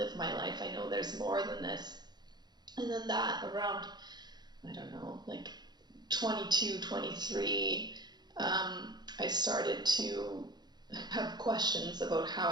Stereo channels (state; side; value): late; left; 0.21 ms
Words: my life. I know there's more than this. And then that around, I don't know, like 22, 23, I started to have questions about how